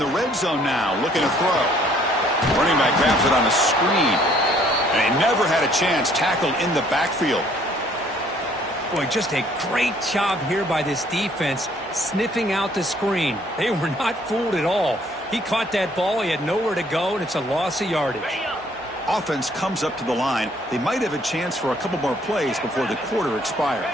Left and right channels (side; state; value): both; normal; correlation 0.61